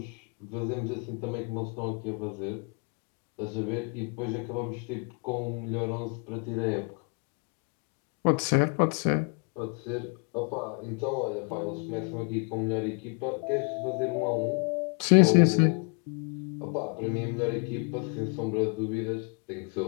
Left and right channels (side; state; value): right; quieter; 37.5 dB